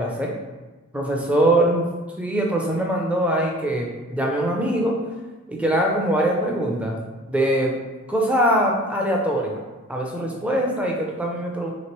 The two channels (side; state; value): both; normal; correlation 0.48